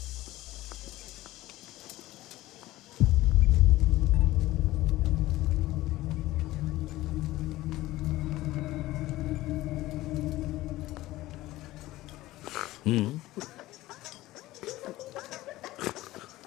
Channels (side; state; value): right; quieter; 17.1 dB